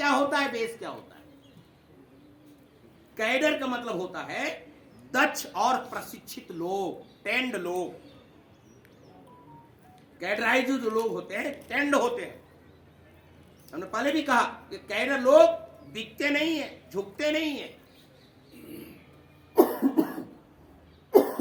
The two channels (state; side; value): identical; both; correlation 1.00